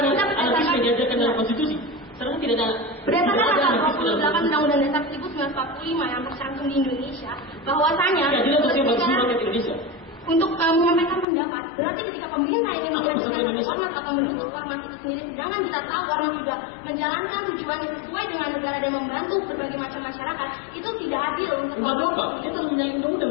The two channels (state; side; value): drops out; right; at 11.2 s